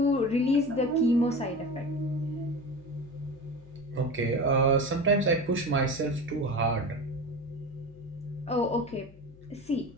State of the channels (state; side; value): noise; left; hum, 23 dB below the sound